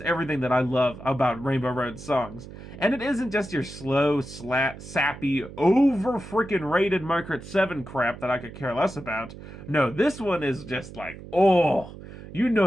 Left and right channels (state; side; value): noise; right; hum, 14 dB below the sound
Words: everything that I love about Rainbow Road songs. And it isn't just your slow, sappy, over-freaking-rated Mario Kart 7 crap that I could care less about. No, this one is just like, oh, you know